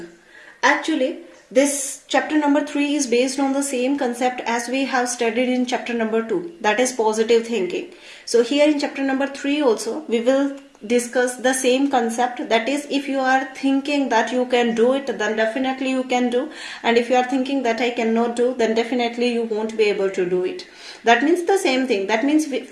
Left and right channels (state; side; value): identical; both; correlation 1.00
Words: Actually, this chapter number 3 is based on the same concept as we have studied in chapter number 2, that is positive thinking. So here in chapter number 3 also we will discuss the same concept, that is if you are thinking that you can do it, then definitely you can do, and if you are thinking that I cannot do, then definitely you won't be able to do it. That means the same thing. That means